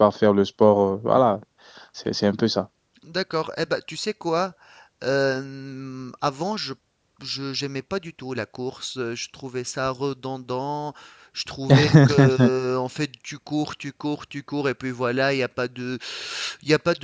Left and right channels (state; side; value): identical; both; correlation 1.00